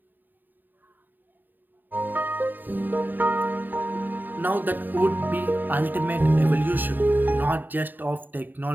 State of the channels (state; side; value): late; left; 0.090 ms